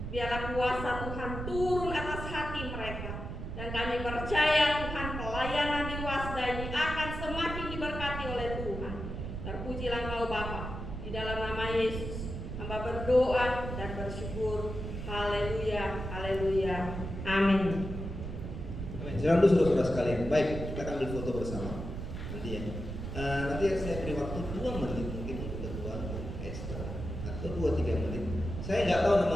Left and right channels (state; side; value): noise; right; rumble, 6 dB below the sound